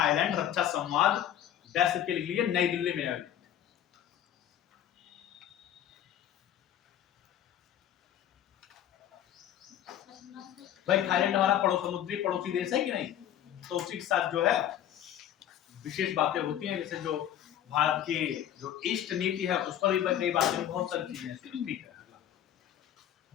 रक्षा संवाद डैश के लिख लीजिए, नई दिल्ली में आयोजित। भाई थाईलैंड हमारा समुद्री पड़ोसी देश है कि नहीं? तो उसी के साथ जो है विशेष बातें होती हैं, जैसे जो भारत की जो ईस्ट नीति है उस पर भी कई बातें, बहुत सारी चीजें हैं। ठीक है,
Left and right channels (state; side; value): quieter; right; 10.9 dB